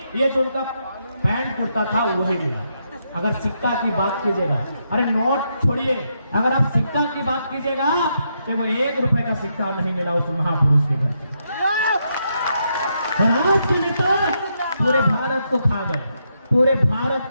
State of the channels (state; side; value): inverted; both; correlation -0.80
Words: ये जो उनका पैंट कुर्ता था वही मिला। अगर सिक्का की बात कीजिएगा, अरे नोट छोड़िए, अगर आप सिक्का की बात कीजिएगा तो वो 1 रुपए का सिक्का नहीं मिला उस महापुरुष के घर। और आज के नेता पूरे भारत को खा गए, पूरे भारत